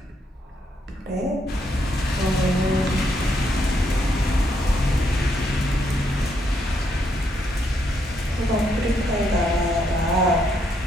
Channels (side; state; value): both; normal; correlation 0.76